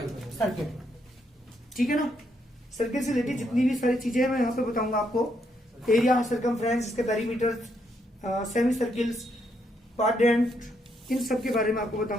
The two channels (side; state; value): both; normal; correlation 0.76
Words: ठीक है ना। सर्किल से रिलेटेड जितनी भी सारी चीजें मैं यहाँ पे बताऊंगा आपको, एरिया, सर्कमफ्रेंस, इसके पेरीमीटर, सेमी सर्किल्स, क्वाड्रेंट, इन सब के बारे में आपको